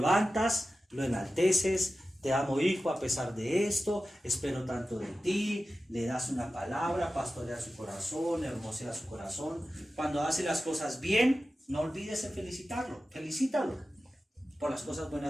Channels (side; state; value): both; normal; correlation 0.94